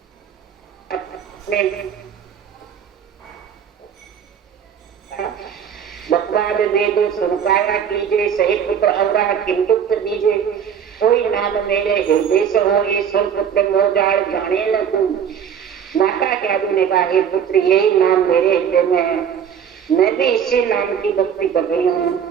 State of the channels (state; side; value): quieter; left; 8.1 dB